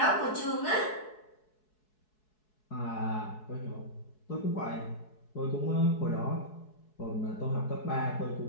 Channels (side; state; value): right; late; 4.7 ms